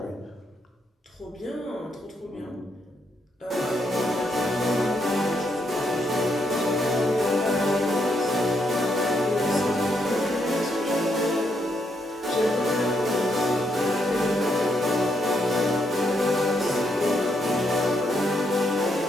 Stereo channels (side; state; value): both; normal; correlation 0.76